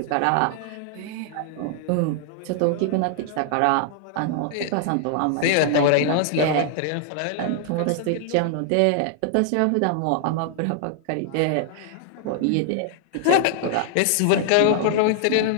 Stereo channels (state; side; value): different; both; correlation 0.00